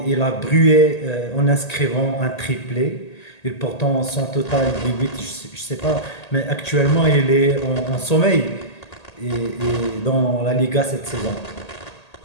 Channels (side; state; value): right; late; 1.8 ms